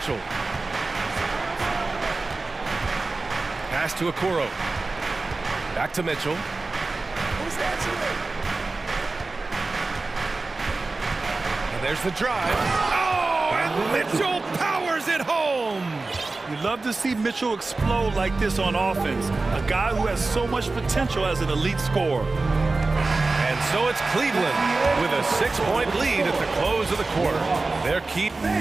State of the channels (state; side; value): quieter; left; 3.5 dB